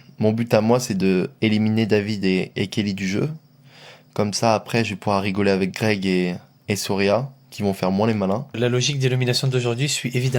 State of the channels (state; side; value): identical; both; correlation 1.00